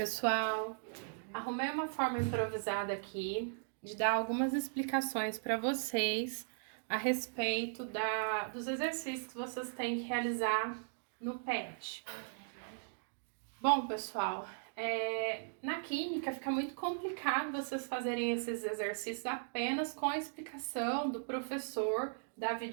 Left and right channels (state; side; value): silent; left; digital silence